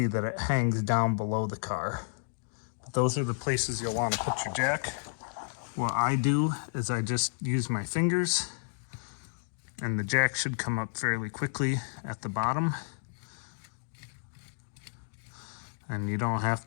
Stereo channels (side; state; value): right; silent; digital silence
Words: that it hangs down below the car. But those are the places you'll want to put your jack. What I do is I just use my fingers, and the jack should come up fairly quickly at the bottom. And you don't